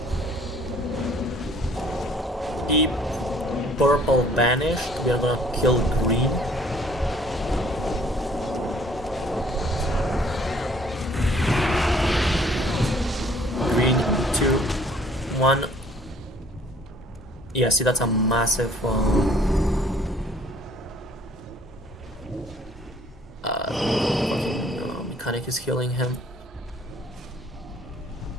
Keep purple banished. We are gonna kill green. Green, 2, 1. Yeah, see, that's a massive mechanic is healing him.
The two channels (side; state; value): both; normal; correlation 0.58